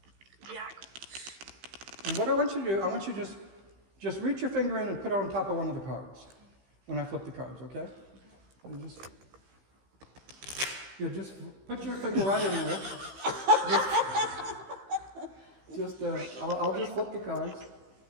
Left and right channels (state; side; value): late; left; 15 ms